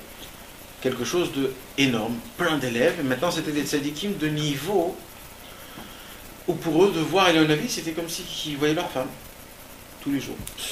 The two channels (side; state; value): both; identical; correlation 1.00